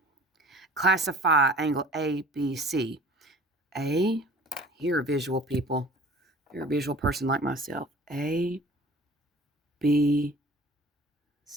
Classify angle ABC. A, you're a visual people. You're a visual person like myself. A, B,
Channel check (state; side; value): normal; both; correlation 0.47